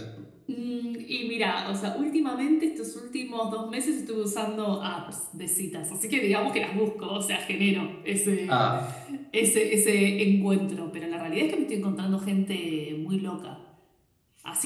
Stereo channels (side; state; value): both; identical; correlation 1.00